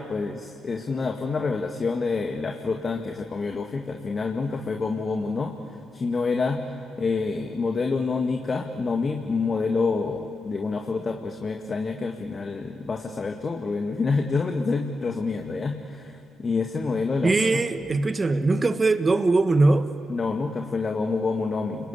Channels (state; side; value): normal; both; correlation 0.88